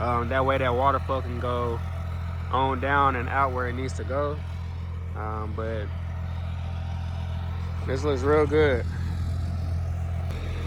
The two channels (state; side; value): identical; both; correlation 1.00